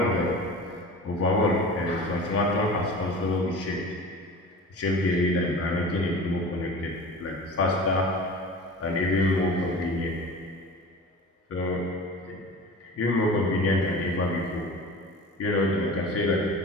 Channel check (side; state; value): both; normal; correlation 0.37